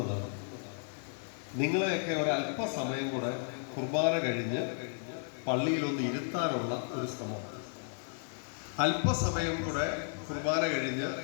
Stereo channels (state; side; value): silent; right; 55 dB below the other